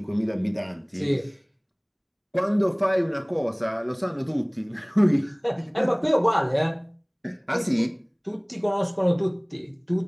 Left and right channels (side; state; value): both; identical; correlation 1.00